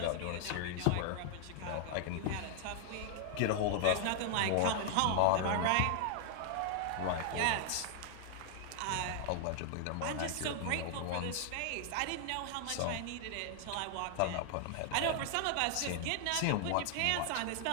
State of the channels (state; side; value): different; both; correlation -0.01